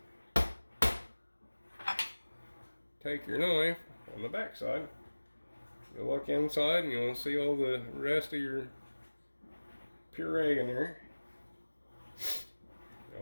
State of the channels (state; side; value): inverted; both; correlation -1.00